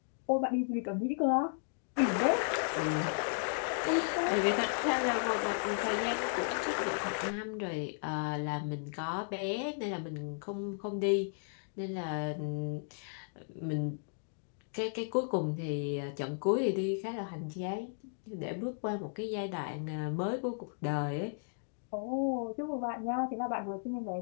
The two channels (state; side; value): silent; right; digital silence